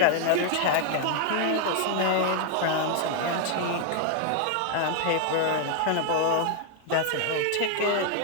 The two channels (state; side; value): different; both; correlation 0.00